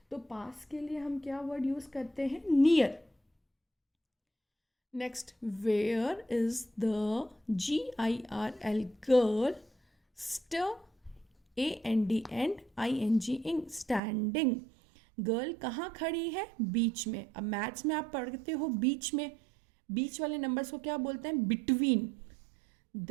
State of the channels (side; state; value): left; drops out; at 14.0 s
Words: तो पास के लिए हम क्या वर्ड यूज करते हैं, near. Next, where is the GIRL, girl. AND and ING, standing. Girl कहाँ खड़ी है, बीच में. अब मैथ्स में आप पढ़ते हो बीच में, बीच वाले नंबर्स को क्या बोलते हैं, between.